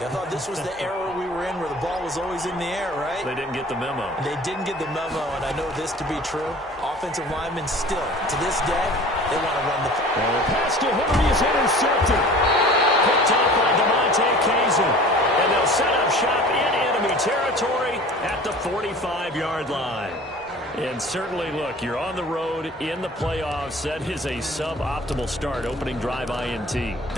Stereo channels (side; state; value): both; normal; correlation 0.44